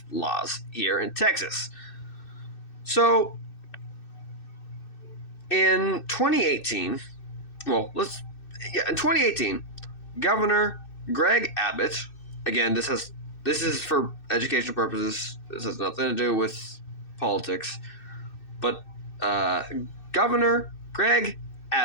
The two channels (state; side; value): late; right; 2.6 ms